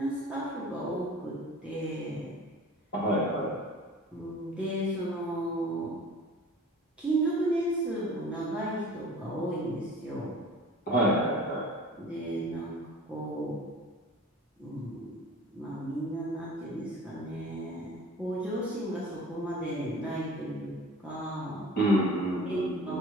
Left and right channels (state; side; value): normal; both; correlation 0.43